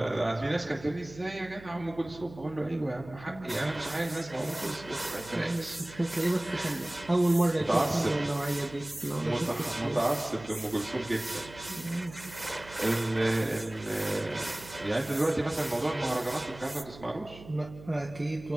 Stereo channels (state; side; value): noise; right; hum, 18 dB below the sound